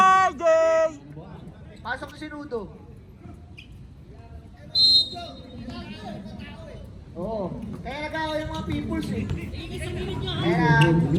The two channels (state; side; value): identical; both; correlation 1.00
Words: Pasok si Sinudo. Oo. Kaya nag-away yung mga peoples eh. Kaya